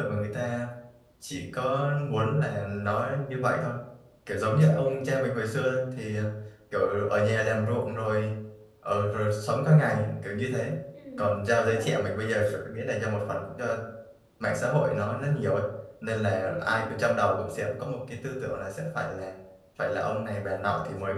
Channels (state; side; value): identical; both; correlation 1.00